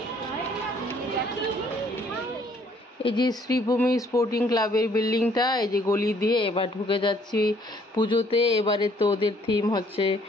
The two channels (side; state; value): both; normal; correlation 0.63